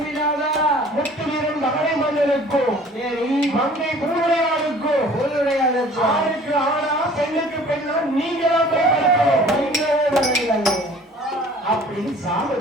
முத்து வீரன் மகளை மன்னனுக்கும் சரி, மங்கை பூவுடையாளுக்கும் ஊருடையாளுக்கு ஆணுக்கு ஆனா பெண்ணுக்கு பெண்ணா நீங்களாம் போய் படுக்கணும் அப்படின்னு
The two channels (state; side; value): normal; both; correlation 0.50